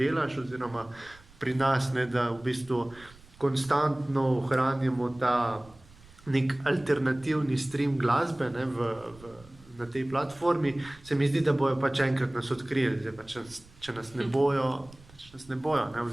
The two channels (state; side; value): noise; right; rumble, 24 dB below the sound